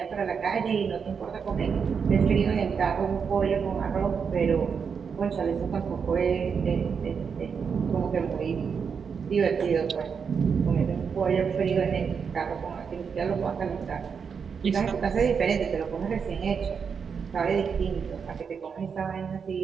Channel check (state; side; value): quieter; left; 6.3 dB